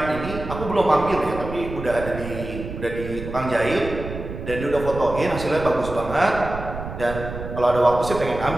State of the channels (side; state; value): right; noise; rumble, 9 dB below the sound